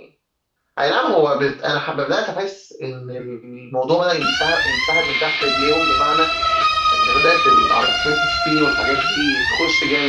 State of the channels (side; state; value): both; identical; correlation 1.00